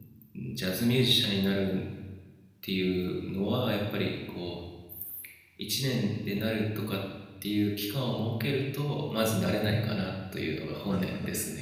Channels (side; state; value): both; identical; correlation 1.00